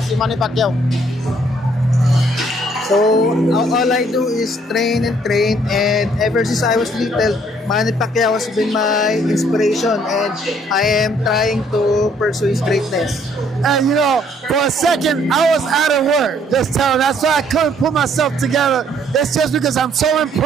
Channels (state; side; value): normal; both; correlation 0.64